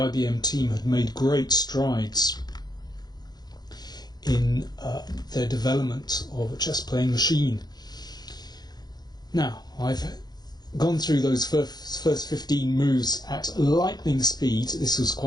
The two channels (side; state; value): right; late; 0.19 ms